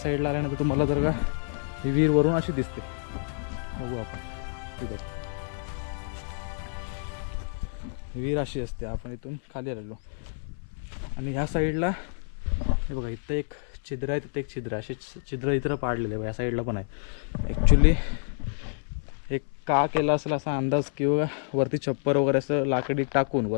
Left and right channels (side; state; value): right; silent; 56 dB below the other